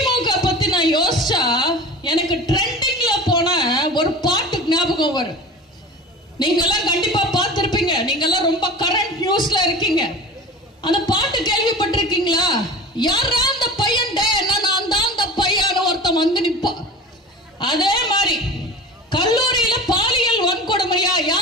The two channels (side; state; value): both; normal; correlation 0.36